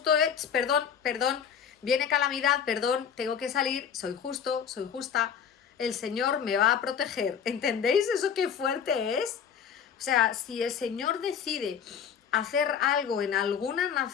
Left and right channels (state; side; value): quieter; right; 7.7 dB